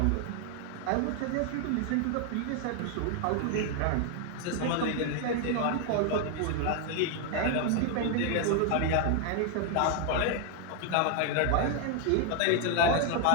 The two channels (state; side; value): different; both; correlation 0.00